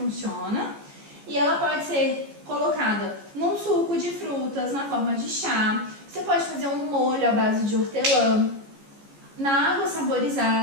E ela pode ser colocada num suco de frutas, na forma de chá. Você pode fazer um molho à base de hortelã. Na água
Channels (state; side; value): late; left; 14 ms